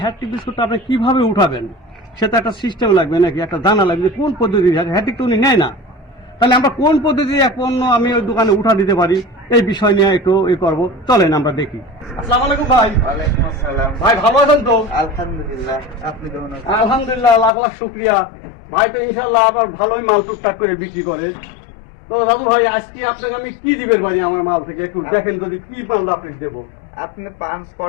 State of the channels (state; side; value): drops out; right; at 17.5 s